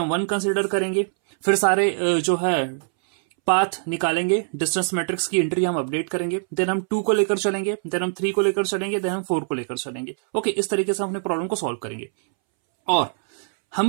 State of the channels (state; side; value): silent; left; 63 dB below the other